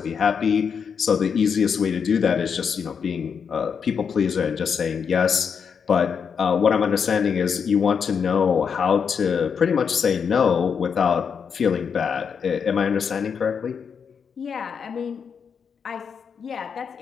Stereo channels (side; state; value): right; quieter; 6.6 dB